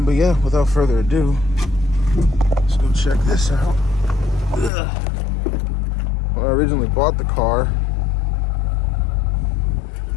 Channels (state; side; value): drops out; right; at 4.7 s